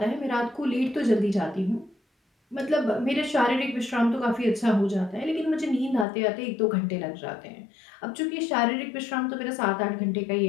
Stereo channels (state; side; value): drops out; right; at 6.1 s